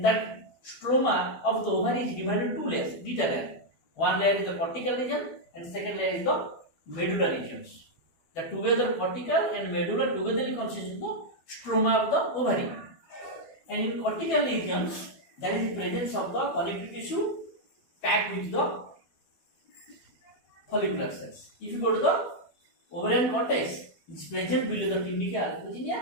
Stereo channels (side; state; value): right; late; 12 ms